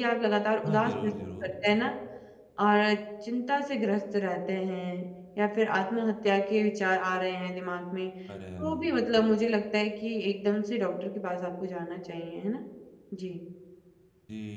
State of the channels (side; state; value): both; identical; correlation 1.00